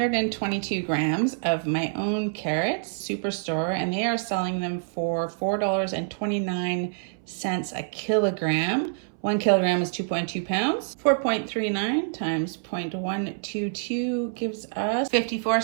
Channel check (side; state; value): left; silent; 61 dB below the other